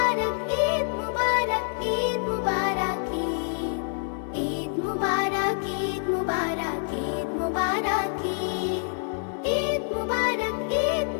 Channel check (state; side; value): silent; right; digital silence